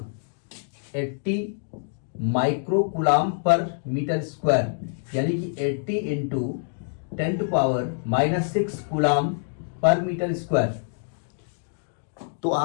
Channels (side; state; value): right; silent; digital silence